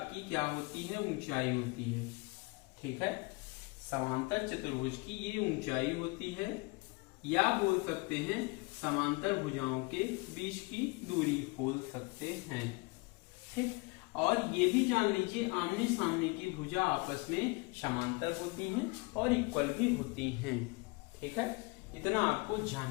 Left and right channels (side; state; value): right; quieter; 27.7 dB